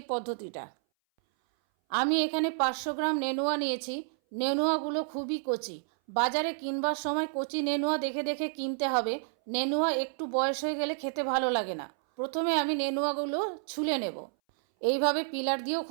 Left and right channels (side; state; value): left; silent; 58 dB below the other